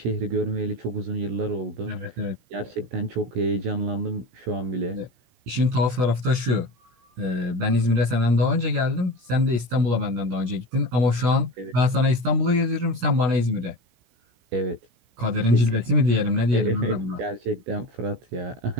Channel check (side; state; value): left; late; 16 ms